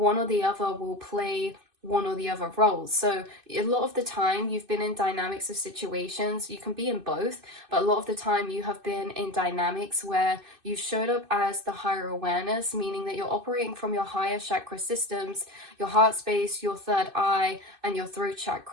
or the other will play one or the other roles. So a lot of the time you've been in dynamics of situations, you can be in both, but a lot of the time you have been in dynamics where you showed up as the higher awareness, meaning that you're operating from your higher chakra systems, your heart space, your third eye, and your throat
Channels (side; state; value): left; late; 2.6 ms